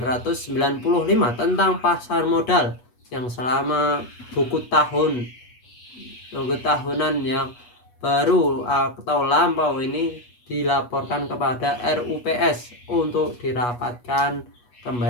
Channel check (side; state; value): right; late; 8.3 ms